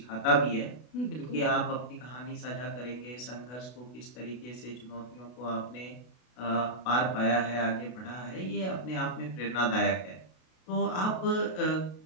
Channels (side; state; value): right; late; 32 ms